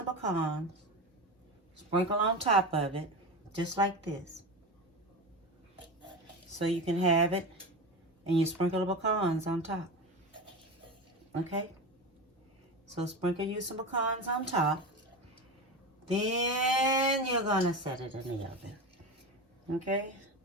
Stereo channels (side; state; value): both; normal; correlation 0.23